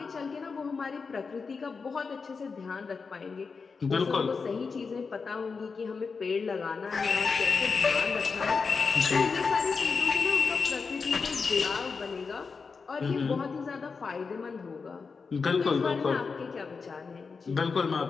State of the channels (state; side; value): quieter; right; 5.0 dB